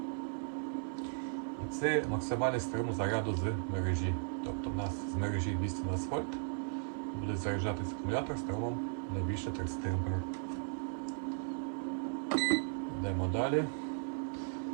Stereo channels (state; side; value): silent; left; digital silence